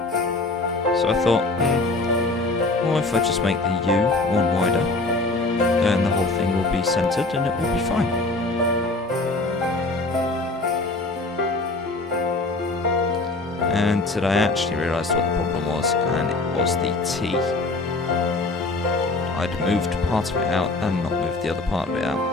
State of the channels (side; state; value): right; quieter; 3.2 dB